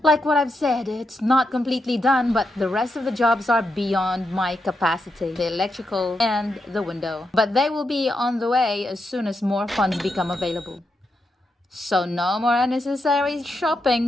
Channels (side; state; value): both; normal; correlation 0.84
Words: Like what I've said, it's not completely done, but the rest of the jobs are beyond my capacity. The electrical and the window. But they will be on the way as soon as more funds become available. So no more unnecessary